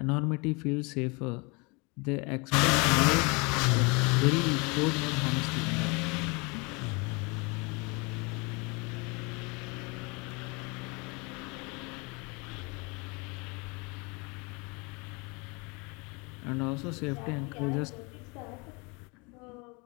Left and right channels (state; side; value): quieter; right; 29.2 dB